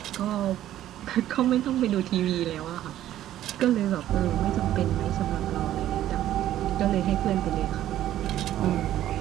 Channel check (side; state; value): left; quieter; 12.7 dB